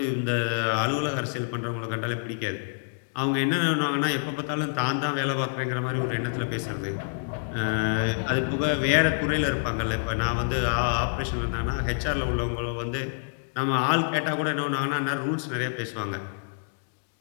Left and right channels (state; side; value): silent; right; digital silence